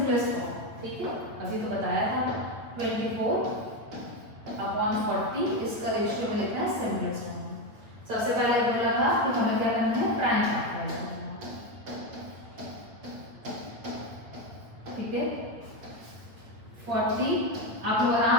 form. ठीक है, अभी तो बताया था 24/40 इसका रेशियो में लिखना है सिंपलेस्ट फॉर्म। सबसे पहले बोला था कि हमें क्या करना है? प्राइम फैक्टर करना है। ठीक है। 40 आप लोग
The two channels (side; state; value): left; late; 8.5 ms